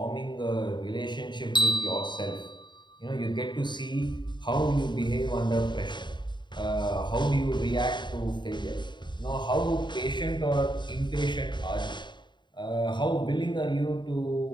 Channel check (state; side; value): late; right; 0.22 ms